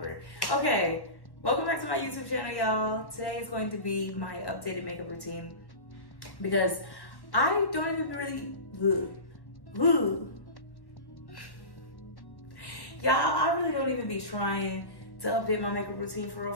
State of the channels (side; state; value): right; late; 1.1 ms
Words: Okay, welcome back to my YouTube channel, y'all. Today is going to be my updated makeup routine because I don't even really, y'all, I really don't even be trying to update my makeup routine for